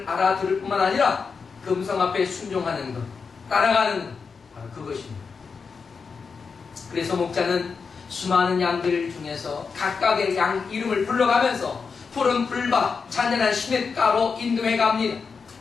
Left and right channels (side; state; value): right; quieter; 5.3 dB